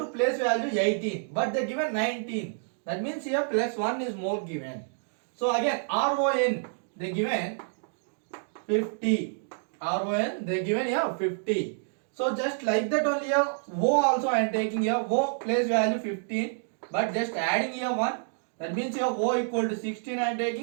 place value 18. But they given 19. That means here plus 1 is more given. So again RON they given 50. RON they given here 50. So just like that only here O also I am taking here. O place value 15 but just adding here 1. That means here O equal to 16 I am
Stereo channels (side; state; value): left; silent; digital silence